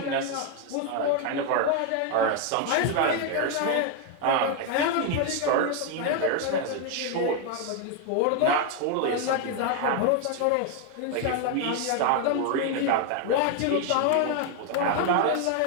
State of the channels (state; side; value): different; both; correlation 0.01